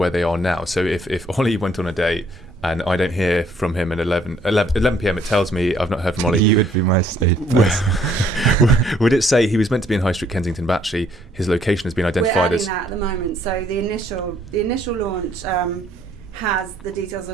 they are now? So if Ollie went on a date and I don't hear from him at 11 p.m, it tells me I've not heard from Ollie. You would be my safe person. Would it say he was meant to be in High Street, Kensington, but actually his location has been identified as... We're adding that at the moment. So the initial launch has the details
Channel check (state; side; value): normal; both; correlation 0.64